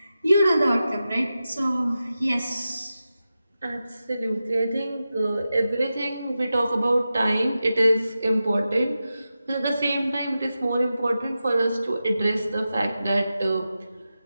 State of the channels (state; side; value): inverted; both; correlation -0.92